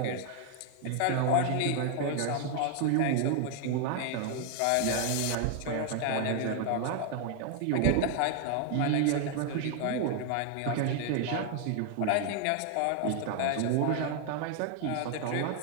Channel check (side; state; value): both; different; correlation 0.00